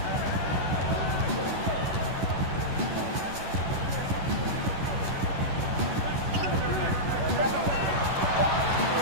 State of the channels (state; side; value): late; left; 11 ms